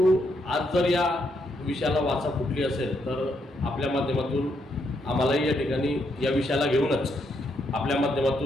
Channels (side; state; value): both; normal; correlation 0.77